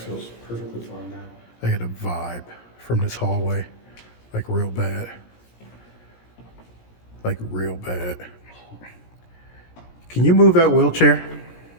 perfectly fine now. I get a vibe from this hallway, like real bad. Like real bad. Can you move that wheelchair?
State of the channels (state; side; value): late; right; 17 ms